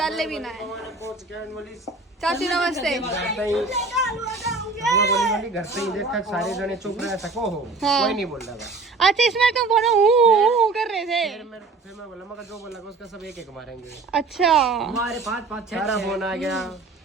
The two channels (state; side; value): quieter; left; 3.8 dB